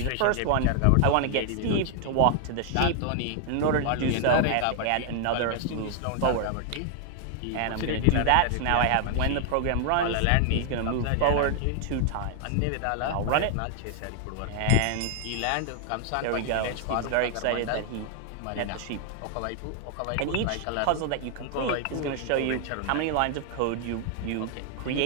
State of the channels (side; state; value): both; different; correlation 0.00